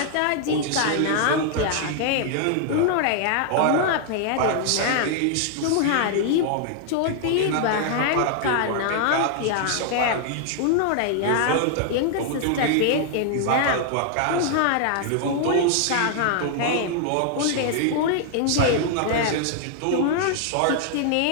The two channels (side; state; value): both; different; correlation 0.00